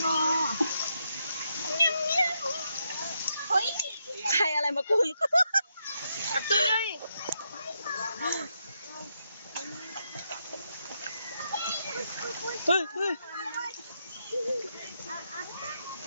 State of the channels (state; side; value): inverted; both; correlation -0.81